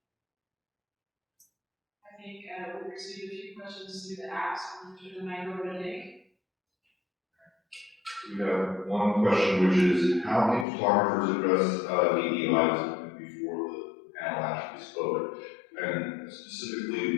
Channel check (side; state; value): right; drops out; at 10.7 s